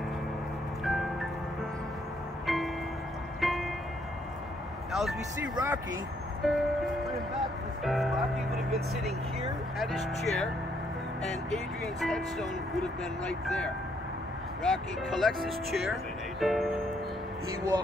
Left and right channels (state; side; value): normal; both; correlation 0.71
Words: Now, as we see Rocky, Rocky would have been sitting here at his chair, and Adrian's headstone would have been right there. Rocky collects his chair, he